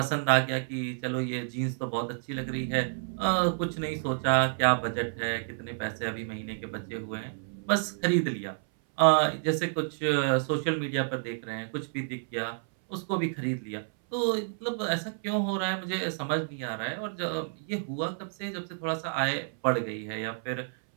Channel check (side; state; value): left; silent; 58 dB below the other